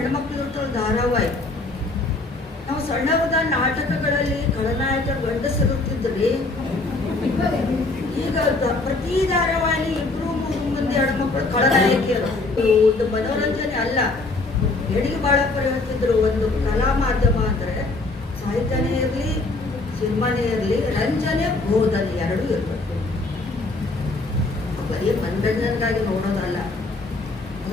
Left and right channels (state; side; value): quieter; right; 3.3 dB